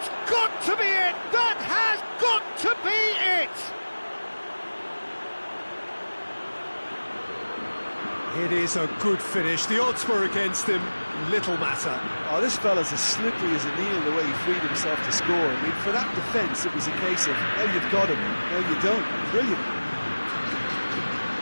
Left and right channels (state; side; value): inverted; both; correlation -1.00